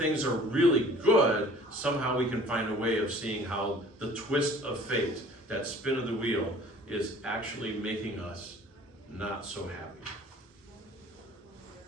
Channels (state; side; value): normal; both; correlation 0.49